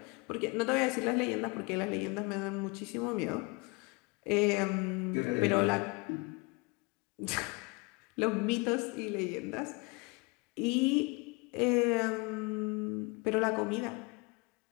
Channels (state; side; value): quieter; right; 28.6 dB